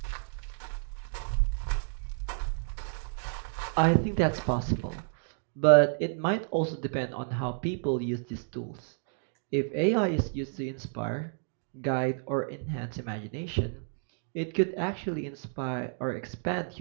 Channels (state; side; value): silent; left; digital silence